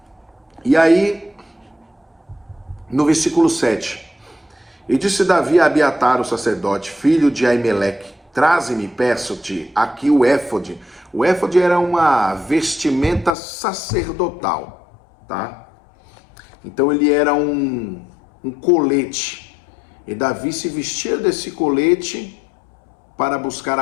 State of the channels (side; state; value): right; drops out; at 13.3 s